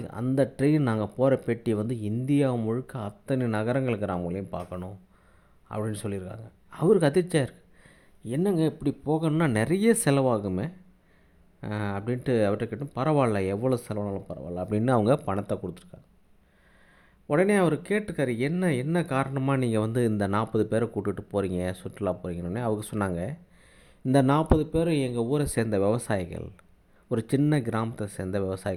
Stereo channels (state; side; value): identical; both; correlation 1.00